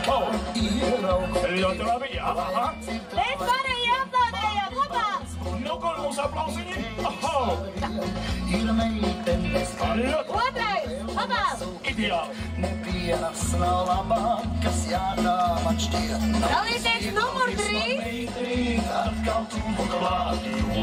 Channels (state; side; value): identical; both; correlation 1.00